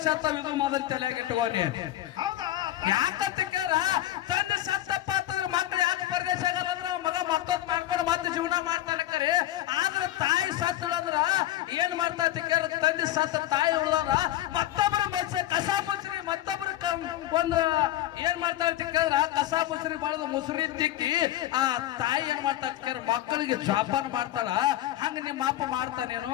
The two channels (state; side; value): quieter; right; 13.9 dB